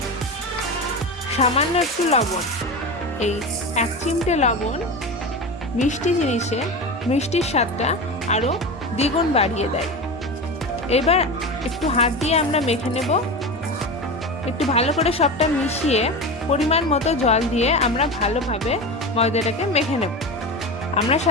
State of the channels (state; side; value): normal; both; correlation 0.25